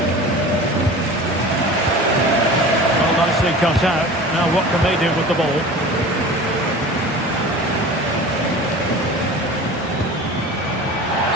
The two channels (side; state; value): both; normal; correlation 0.38